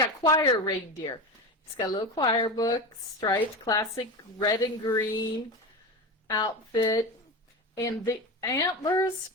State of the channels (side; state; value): both; normal; correlation 0.23